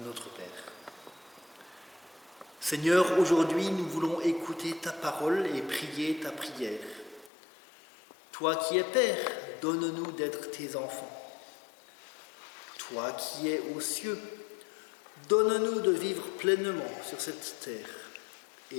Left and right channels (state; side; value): drops out; right; at 7.3 s